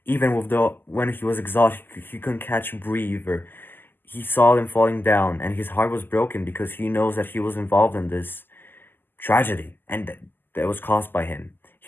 even with the when he was exhausted. He couldn't catch a breath, or he saw them falling down, and his heart was broken because he knows that he was involved in this tragedy, and that was caused by him.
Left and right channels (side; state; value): right; late; 0.094 ms